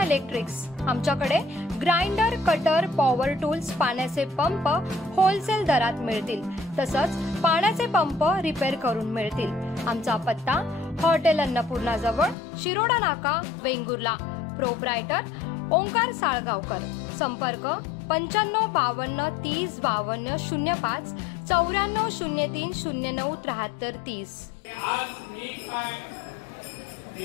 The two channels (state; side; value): drops out; right; at 12.4 s